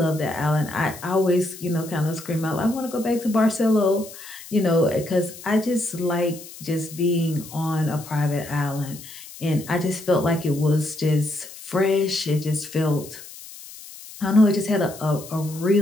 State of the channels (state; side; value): noise; left; hiss, 16 dB below the sound